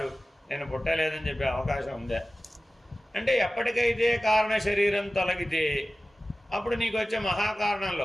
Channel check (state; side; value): normal; both; correlation 0.96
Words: నేను పుట్టలేదని చెప్పే అవకాశం ఉందా? అంటే ఎప్పటికైతే కారణ శరీరం తొలగితే అప్పుడు నీకు వచ్చే